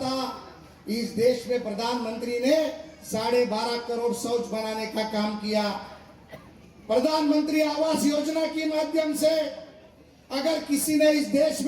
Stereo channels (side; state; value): both; identical; correlation 1.00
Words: इस देश में प्रधानमंत्री ने 12.5 करोड़ शौच बनाने का काम किया। प्रधानमंत्री आवास योजना के माध्यम से अगर किसी ने इस देश